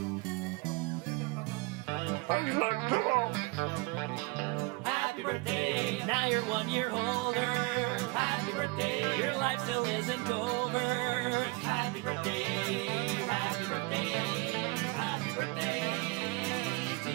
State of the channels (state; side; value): quieter; left; 26.4 dB